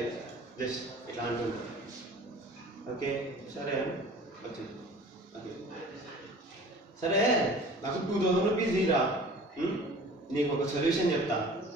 జస్ట్ ఇట్లా అంటుంది. ఓకే సరే వచ్చింది. ఓకే సరే, నాకు 2000 రూపీస్ ఇరా. నీకు ఒక సొల్యూషన్ చెప్తా.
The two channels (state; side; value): normal; both; correlation 0.45